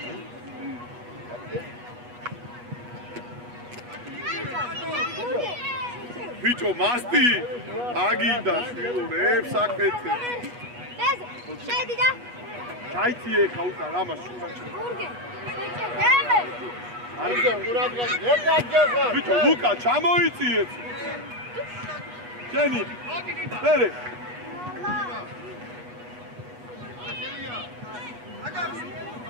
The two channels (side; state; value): left; late; 8.3 ms